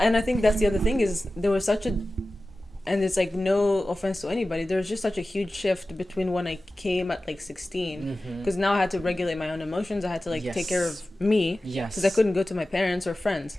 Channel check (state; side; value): normal; both; correlation 0.95